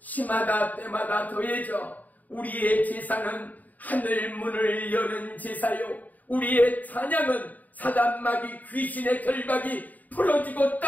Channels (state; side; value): late; right; 0.079 ms